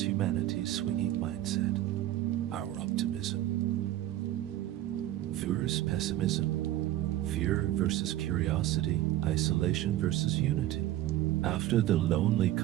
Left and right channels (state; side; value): quieter; left; 14.0 dB